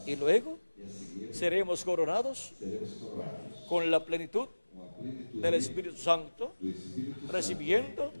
Y luego e a seguir seremos coronados seremos coroados con la plenitud com a plenitude del Espíritu Santo, do Espírito recibiendo Santo,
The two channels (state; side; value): inverted; both; correlation -1.00